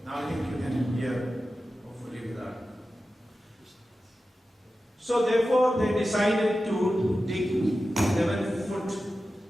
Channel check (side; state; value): both; normal; correlation 0.93